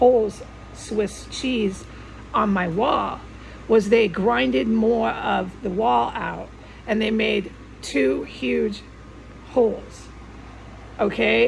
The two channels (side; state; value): both; identical; correlation 1.00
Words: Swiss cheese on my wall was they grinded more of the wall out, and they made 2 huge holes,